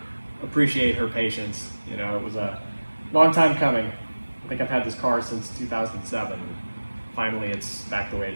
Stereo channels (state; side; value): inverted; both; correlation -1.00